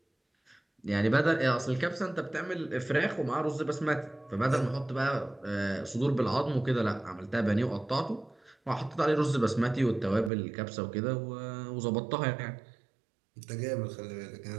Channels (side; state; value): left; drops out; at 10.3 s